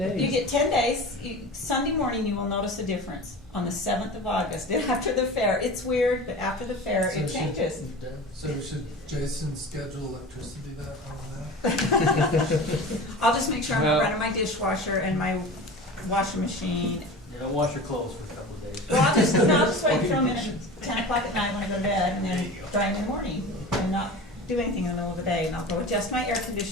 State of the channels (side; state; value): both; normal; correlation 0.34